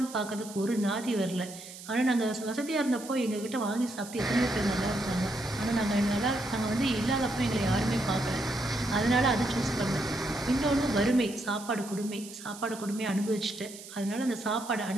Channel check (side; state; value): right; noise; hiss, 15 dB below the sound